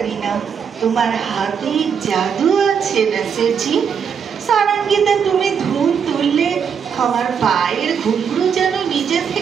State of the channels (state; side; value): quieter; left; 7.1 dB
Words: ना। तुम्हार हाथे जादू আছে नसीर जी। সারাঙ্গিতে তুমি ধুন তুললে আমার পায়ের ঘুঙরু যেন নিজে